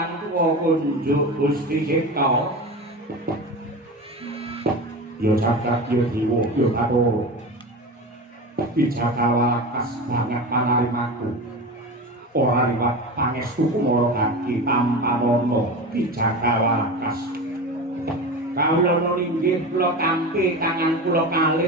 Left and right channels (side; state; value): both; normal; correlation 0.27